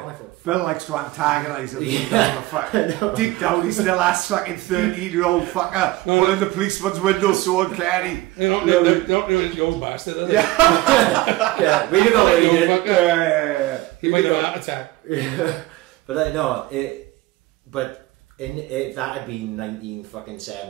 I thought, Bill likes to antagonise him. Deep down, he still has fucking 13-year-old fucker put in the policeman's window so uncanny. They don't do it, you old bastard, do they? Yeah, we did know what he did. He might have an heart attack. But I know but if that had been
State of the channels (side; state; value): left; quieter; 18.5 dB